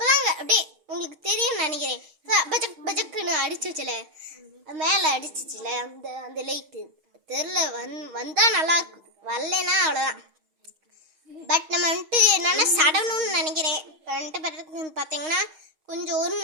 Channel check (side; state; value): left; late; 6.4 ms